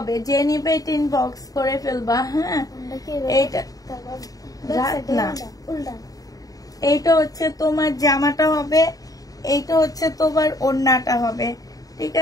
যে নিবে এটা ইনবক্স করে ফেলবা। হ্যাঁ, এইটা না, এইটা হচ্ছে তোমার জামাটা হবে, এইটা হচ্ছে তোমার ওড়নাটা হবে, ঠিক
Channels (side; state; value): right; late; 0.18 ms